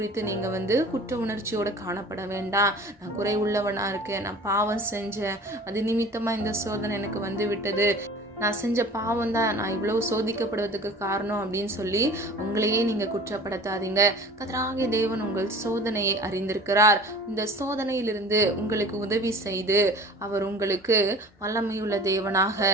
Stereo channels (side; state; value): both; normal; correlation 0.42